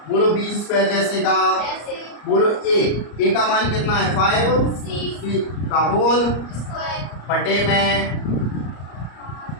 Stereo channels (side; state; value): right; late; 34 ms